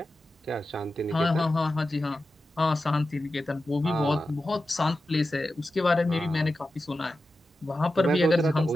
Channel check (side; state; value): both; normal; correlation 0.92